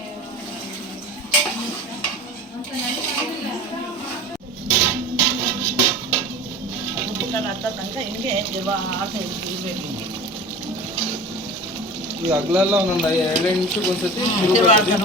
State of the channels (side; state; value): both; normal; correlation 0.35